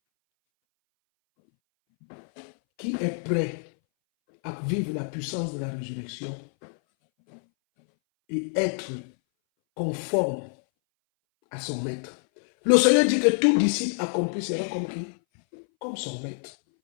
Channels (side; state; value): right; silent; 60 dB below the other